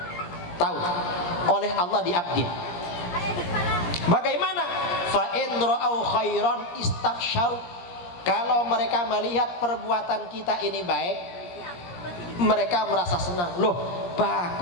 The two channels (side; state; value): right; late; 17 ms